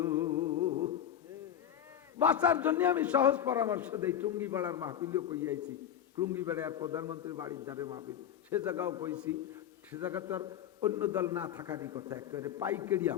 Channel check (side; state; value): right; quieter; 9.8 dB